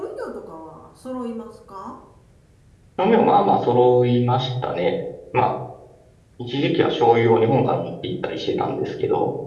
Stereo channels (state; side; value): identical; both; correlation 1.00